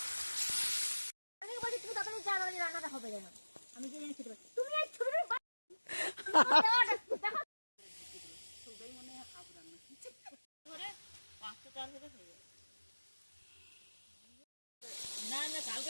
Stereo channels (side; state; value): both; inverted; correlation -1.00